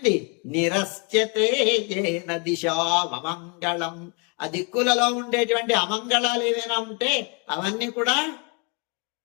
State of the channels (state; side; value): quieter; right; 34.4 dB